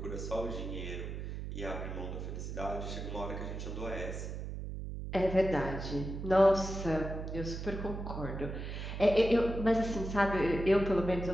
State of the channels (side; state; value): right; noise; hum, 6 dB below the sound